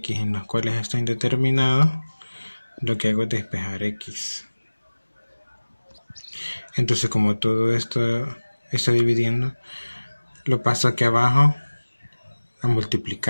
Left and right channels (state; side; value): inverted; both; correlation -1.00